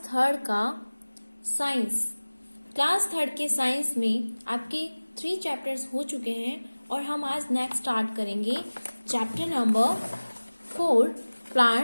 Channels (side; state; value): both; inverted; correlation -1.00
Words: थर्ड का साइंस। क्लास थर्ड के साइंस में आपके 3 चैप्टर्स हो चुके हैं और हम आज नेक्स्ट स्टार्ट करेंगे चैप्टर नंबर 4